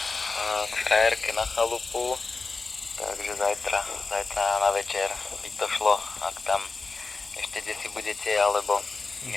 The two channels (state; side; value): quieter; right; 4.0 dB